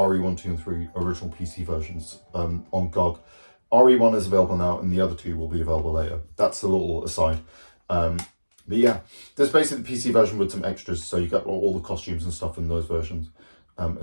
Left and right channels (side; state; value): both; inverted; correlation -1.00